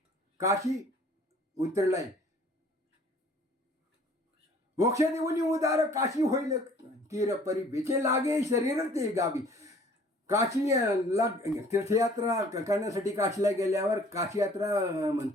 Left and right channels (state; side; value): normal; both; correlation 0.54